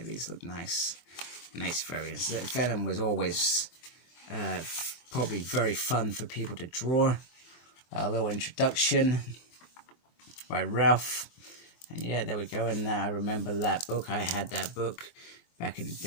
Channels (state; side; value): late; right; 23 ms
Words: these look nice. Nice variants. Venom was always probably very fun for people to draw. A little introduction by Ralph. And yeah, there we go. And I remember that book. I had that book back in the